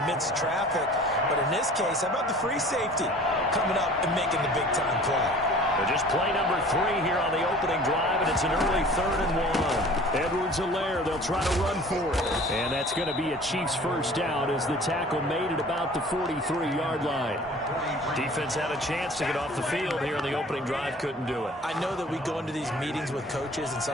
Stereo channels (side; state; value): both; normal; correlation 0.47